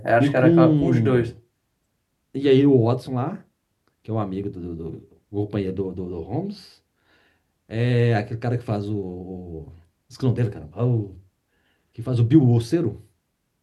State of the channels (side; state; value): both; identical; correlation 1.00